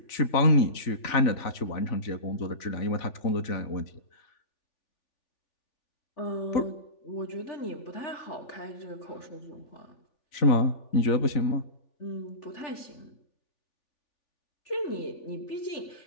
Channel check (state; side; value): late; right; 3.4 ms